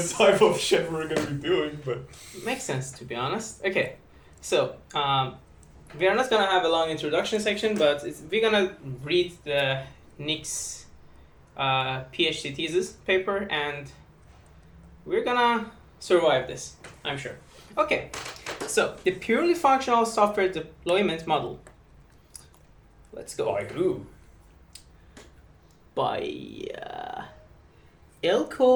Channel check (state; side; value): identical; both; correlation 1.00